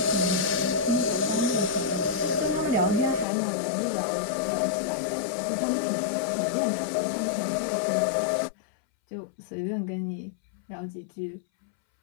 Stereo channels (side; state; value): right; drops out; at 3.2 s